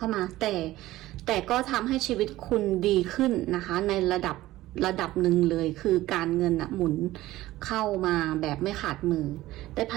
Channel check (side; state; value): left; quieter; 16.4 dB